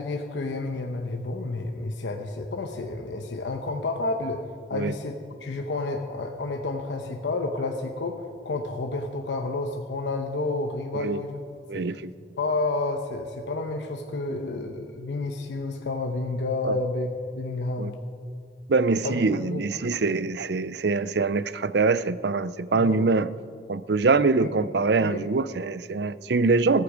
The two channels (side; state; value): both; normal; correlation 0.14